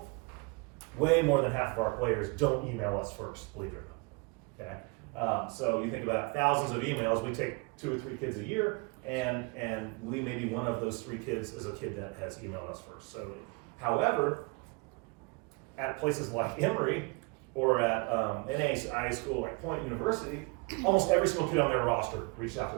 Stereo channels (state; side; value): quieter; left; 30.3 dB